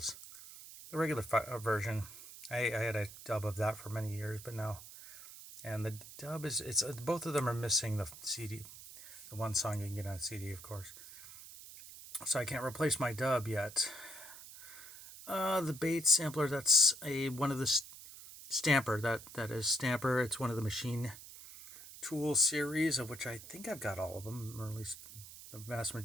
the regular version. I had a dub of that for many years, but now, and the dub it's both of them are missing the CD, the one song you can get on CD, of course. So I can't replace my dub yet. The Bates sampler, that's one of the Stamper, that is Stamper. It's one of the Machine Tool series, of which I think I've got all of them, or at least the vast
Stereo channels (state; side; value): noise; right; hiss, 15 dB below the sound